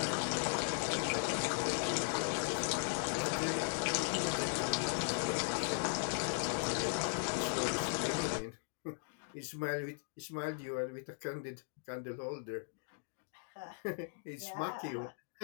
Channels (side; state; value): right; silent; digital silence